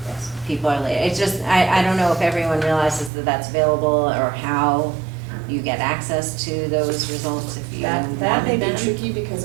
people are late. It's just, I don't know if everyone realizes that that's available, or how you get access to those results if you That may wanted be them? tricky because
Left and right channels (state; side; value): drops out; left; at 3.1 s